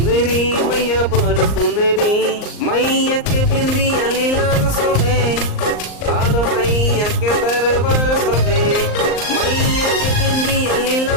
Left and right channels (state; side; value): late; right; 38 ms